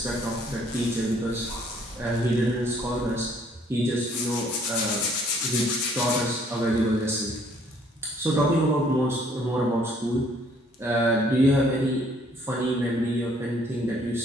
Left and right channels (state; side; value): normal; both; correlation 0.62